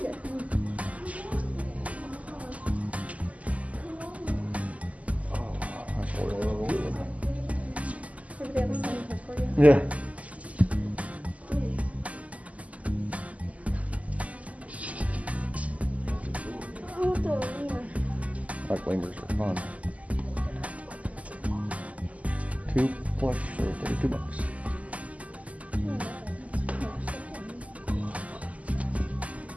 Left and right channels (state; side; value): late; left; 0.071 ms